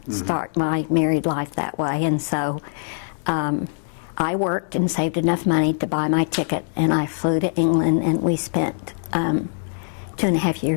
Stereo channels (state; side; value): silent; right; digital silence